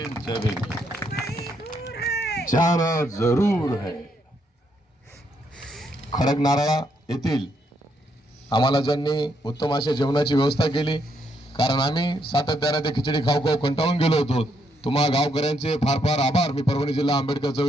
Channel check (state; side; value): normal; both; correlation 0.75